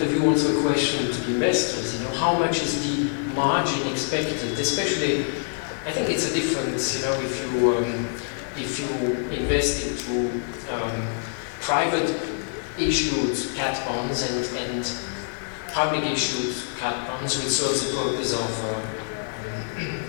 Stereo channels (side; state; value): right; silent; 57 dB below the other